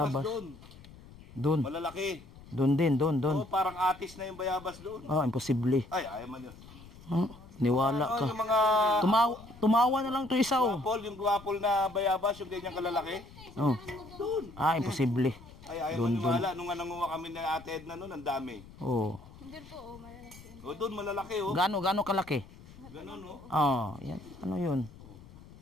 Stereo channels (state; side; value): noise; left; rumble, 19 dB below the sound